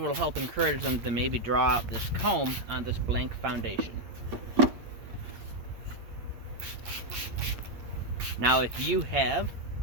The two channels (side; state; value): left; late; 8.7 ms